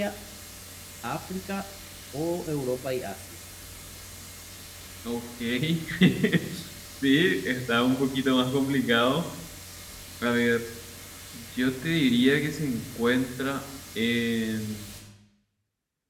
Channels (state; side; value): identical; both; correlation 1.00